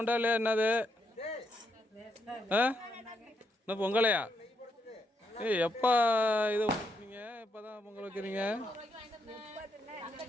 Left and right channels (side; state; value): both; normal; correlation 0.78